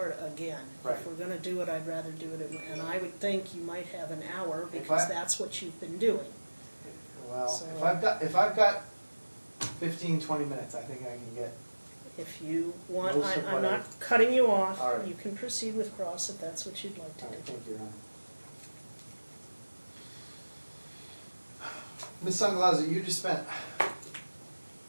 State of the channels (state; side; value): inverted; both; correlation -1.00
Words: again. Right. If we're gonna do it, I'd rather do it, and I would think you might have an hour, If because I- that's what you've been doing. well, So- if I've got 15, 20 minutes, I think I can get, If you want, Most of I'm what I- not cutting you off, All right. you can proceed with cross if that's what you'd like to all right, do. thank you, Ron. Ms. Sangalaza, you just spent